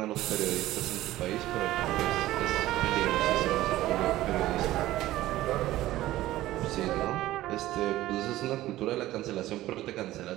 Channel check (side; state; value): left; quieter; 15.7 dB